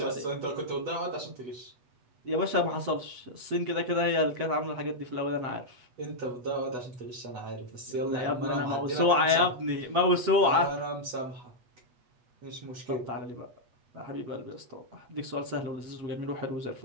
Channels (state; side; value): late; left; 8.2 ms